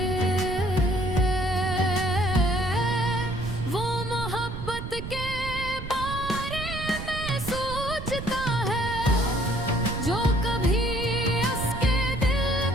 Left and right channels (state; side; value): noise; right; rumble, 7 dB below the sound